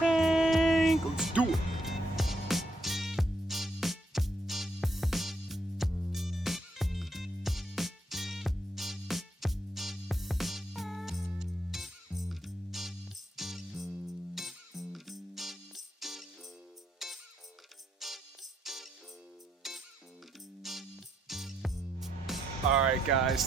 Let's do it. Alright guys,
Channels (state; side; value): normal; both; correlation 0.76